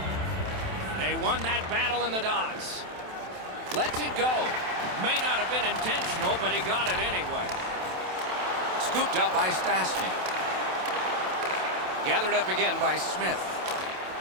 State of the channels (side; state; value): left; late; 27 ms